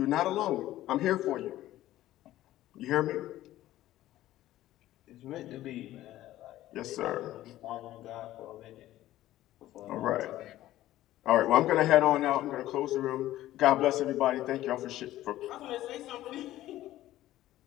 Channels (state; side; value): quieter; right; 14.6 dB